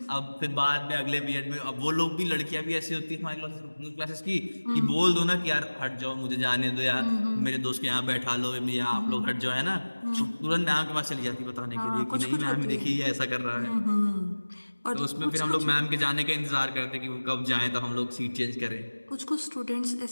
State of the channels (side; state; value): both; inverted; correlation -1.00